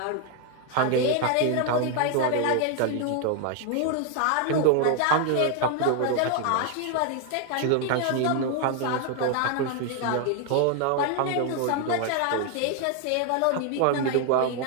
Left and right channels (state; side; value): different; both; correlation 0.01